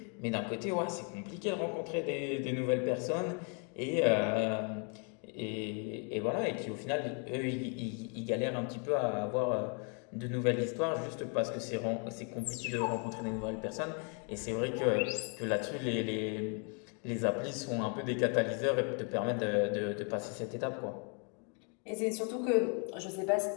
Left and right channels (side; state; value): right; quieter; 38.3 dB